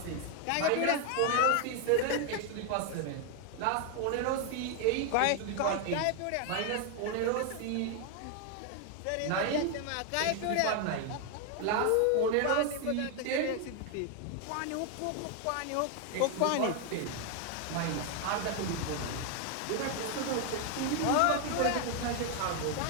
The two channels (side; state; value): both; different; correlation 0.01